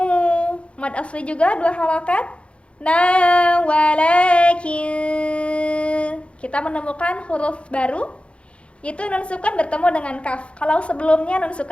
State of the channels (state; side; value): late; right; 0.059 ms